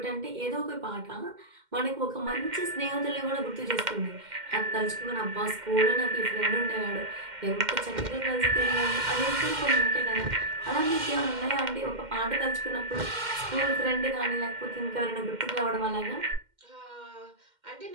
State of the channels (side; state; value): left; late; 2.1 ms